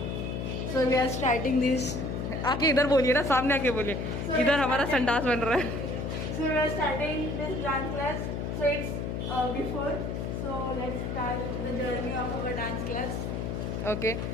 So we are starting this. आके इधर बोलिए ना, सामने आके बोलिए। इधर हमारा संडास बन रहा है। So we are starting this dance class. So it's before, so let's start the journey of our dance class. Okay,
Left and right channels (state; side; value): noise; left; hum, 3 dB below the sound